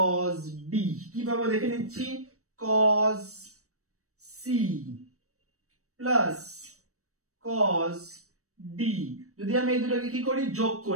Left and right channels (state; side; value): late; left; 0.65 ms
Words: d, কি পাবো দেখে নিচ্ছি, cos c plus cos d। যদি আমি এই দুটোকে কি করি যোগ